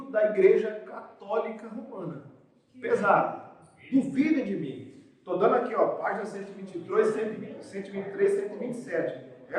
da Igreja Católica Romana. Pesado. Duvidem de mim. Estou dando aqui, ó, página 123, 127.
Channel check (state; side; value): identical; both; correlation 1.00